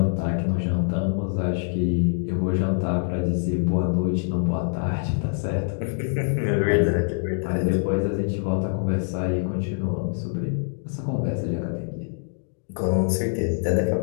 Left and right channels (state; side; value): silent; right; digital silence